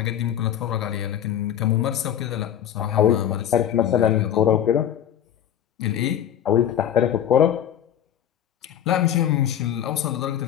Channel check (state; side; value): quieter; right; 10.2 dB